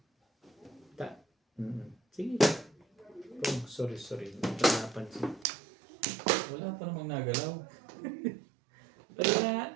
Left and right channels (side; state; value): left; drops out; at 5.5 s